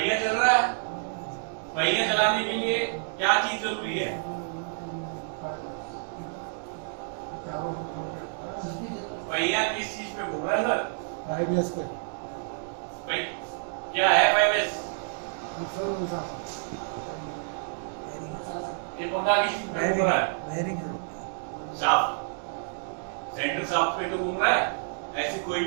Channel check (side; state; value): left; silent; digital silence